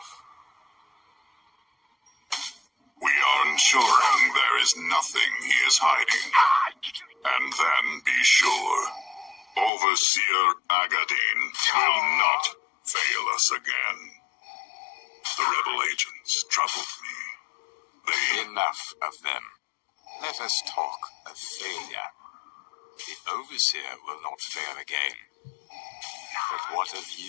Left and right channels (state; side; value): drops out; right; at 9.7 s